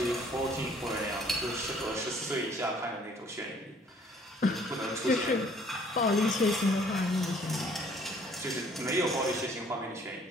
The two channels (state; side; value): normal; both; correlation 0.59